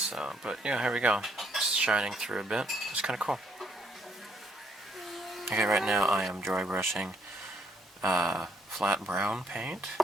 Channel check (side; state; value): both; normal; correlation 0.70